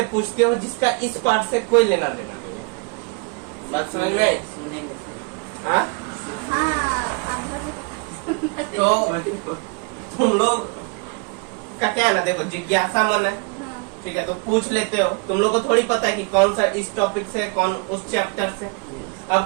पूछते हो जिसका इस पार्ट से कोई लेना देना नहीं है। बात समझ में आई? सुनने में हाँ? तो तुम लोग का क्या है ना, देखो जिज्ञासा मन है, ठीक है, तो पूछ लेते हो। तुम लोग को थोड़ी पता है कि कौन सा इस टॉपिक से, कौन उस चैप्टर से।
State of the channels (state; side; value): quieter; left; 31.9 dB